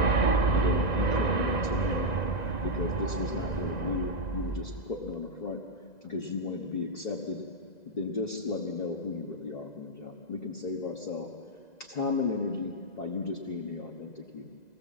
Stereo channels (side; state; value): right; late; 2.0 ms